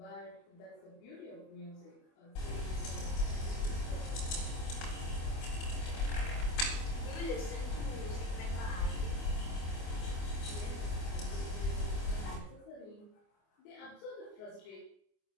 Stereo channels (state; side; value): late; right; 24 ms